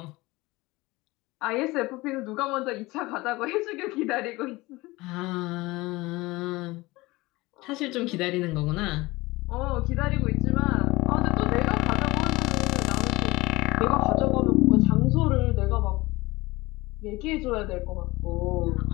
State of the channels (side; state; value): right; quieter; 21.2 dB